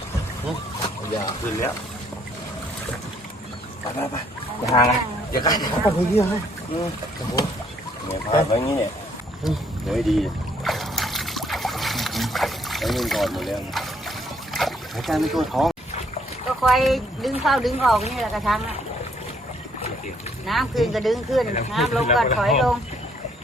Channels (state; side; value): normal; both; correlation 0.67